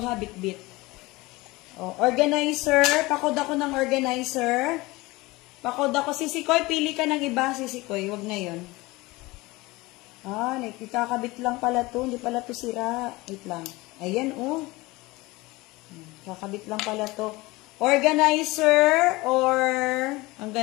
ha, bit-bit. Oh, organizer, pakod ako ng organizer. Pakod ako, Sisikoy, pili ka ng iba, Sisikoy, wag na yun. Ah, ikakabit lang pala to, hindi pala to sira. Wait lang. Ayan, oh. Kakabit lang pala to. Organizer, or, ang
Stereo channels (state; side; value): quieter; right; 21.6 dB